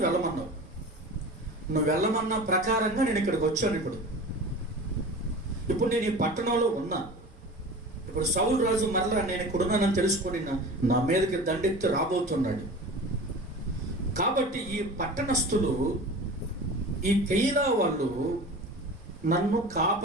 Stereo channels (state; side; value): normal; both; correlation 0.36